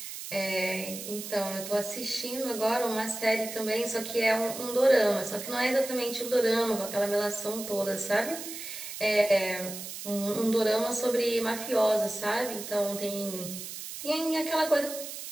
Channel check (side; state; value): right; noise; hiss, 9 dB below the sound